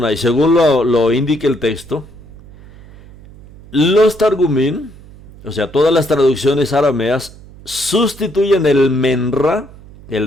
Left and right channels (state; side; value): noise; right; hum, 21 dB below the sound